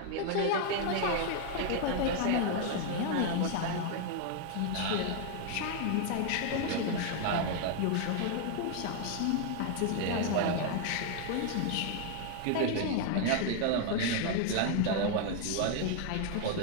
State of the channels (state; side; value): different; both; correlation 0.00